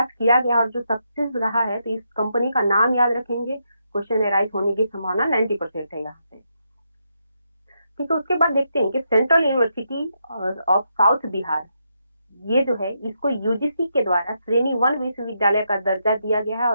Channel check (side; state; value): both; inverted; correlation -0.81